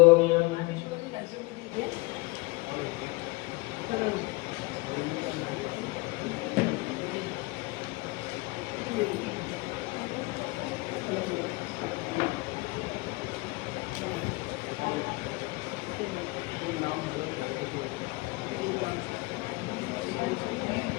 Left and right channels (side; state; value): right; quieter; 24.8 dB